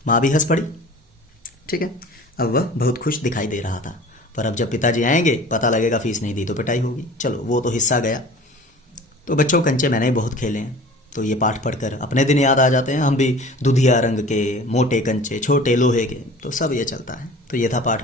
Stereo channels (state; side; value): normal; both; correlation 0.43